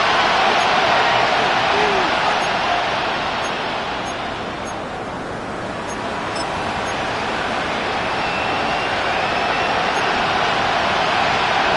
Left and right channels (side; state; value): both; identical; correlation 1.00